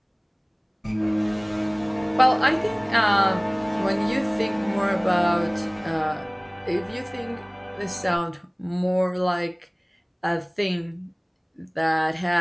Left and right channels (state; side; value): identical; both; correlation 1.00